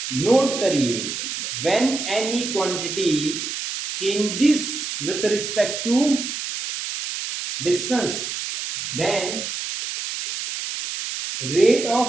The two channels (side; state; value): right; noise; hiss, 5 dB below the sound